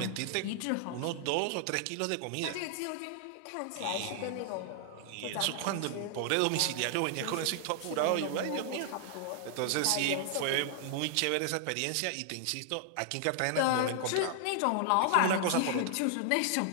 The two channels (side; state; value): both; different; correlation 0.00